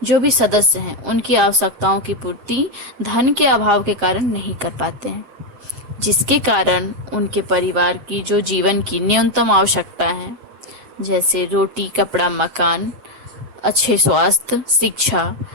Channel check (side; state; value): left; late; 7.5 ms